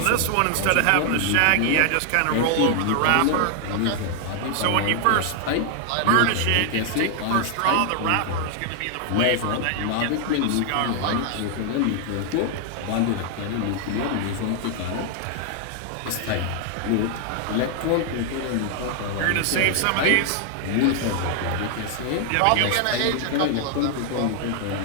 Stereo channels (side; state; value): both; different; correlation 0.00